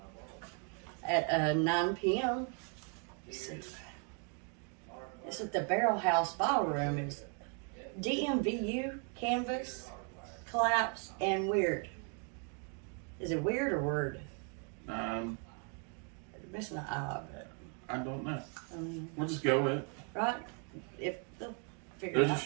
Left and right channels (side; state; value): left; quieter; 39.4 dB